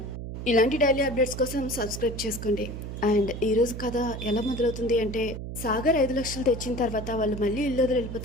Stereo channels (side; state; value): right; noise; hum, 8 dB below the sound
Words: ఇలాంటి డైలీ అప్డేట్స్ కోసం సబ్స్క్రైబ్ చేసుకోండి. అండ్ ఈరోజు కథ ఎలా మొదలవుతుంది అంటే, సాగర్ 5 లక్షలు తెచ్చిన తర్వాత వాళ్ళు మళ్ళీ ఇల్లు వదిలి